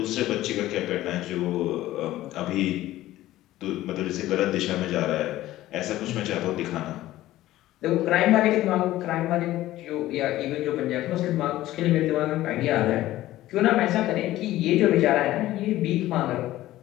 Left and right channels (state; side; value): quieter; right; 15.3 dB